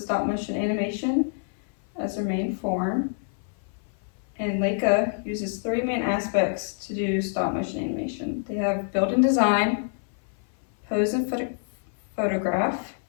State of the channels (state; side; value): silent; right; 57 dB below the other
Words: motion animation as their main form, and Leica uses three main aspects to do stop motion animation. They have built-in design, pose and photograph,